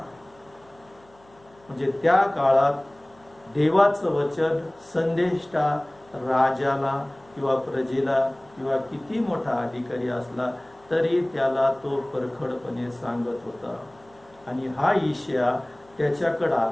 म्हणजे त्या काळात देवाचं वचन संदेष्टा राजाला किंवा प्रजेला किंवा किती मोठा अधिकारी असला तरी त्याला तो परखडपणे सांगत होता. आणि हा यशाया त्याच्याकडे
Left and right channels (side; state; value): left; noise; hum, 29 dB below the sound